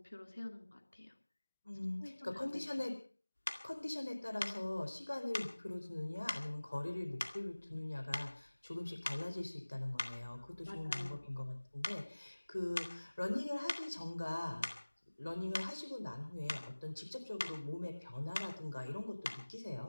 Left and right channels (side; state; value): both; inverted; correlation -1.00